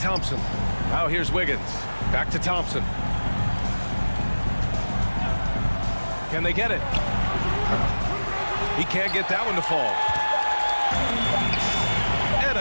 Now here's Wiggins. Back to Thompson. Can they get it? He can't get that one to fall. And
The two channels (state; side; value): inverted; both; correlation -1.00